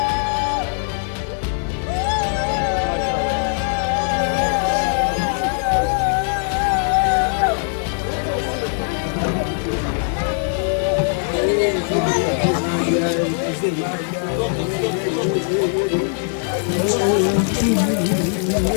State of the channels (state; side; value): silent; right; digital silence